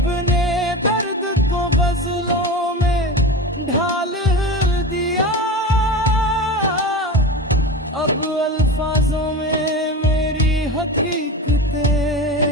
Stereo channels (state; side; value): normal; both; correlation 0.27